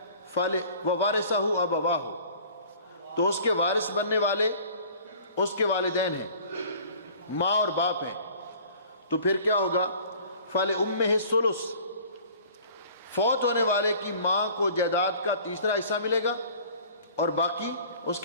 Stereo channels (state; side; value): inverted; both; correlation -0.48